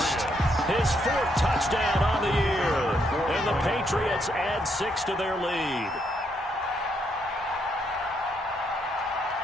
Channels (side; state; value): both; normal; correlation 0.75